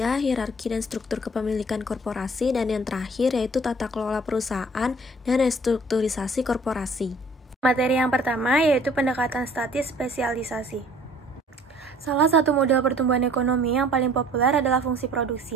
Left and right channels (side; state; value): both; normal; correlation 0.53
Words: hierarki dan struktur kepemilikan korporasi, dan yang terakhir yaitu tata kelola perusahaan dan restrukturisasi korporasi. Materi yang pertama yaitu pendekatan statis spesialisasi. Salah satu model pertumbuhan ekonomi yang paling populer adalah fungsi